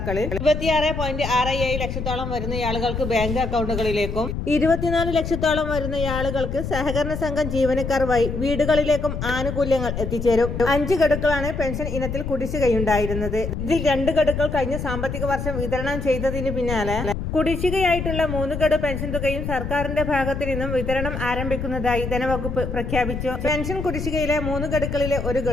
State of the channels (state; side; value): noise; left; rumble, 4 dB below the sound